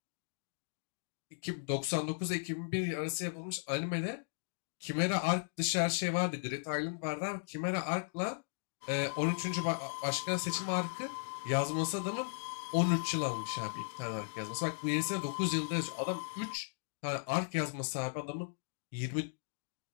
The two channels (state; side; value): silent; right; digital silence